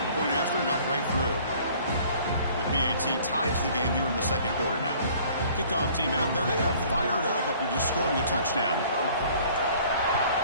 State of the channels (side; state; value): both; inverted; correlation -0.54